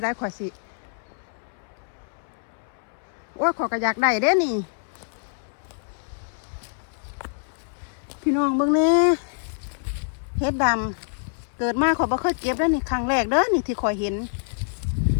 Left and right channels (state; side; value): silent; right; 61 dB below the other